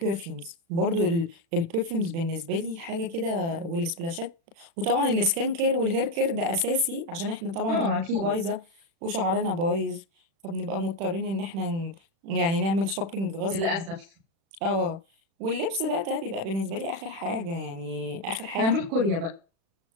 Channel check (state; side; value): late; left; 36 ms